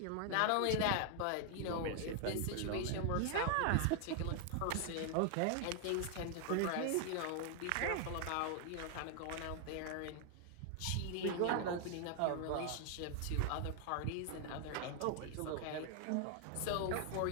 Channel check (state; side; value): different; both; correlation 0.00